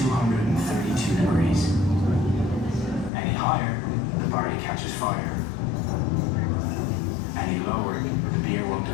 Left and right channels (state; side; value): drops out; right; at 3.1 s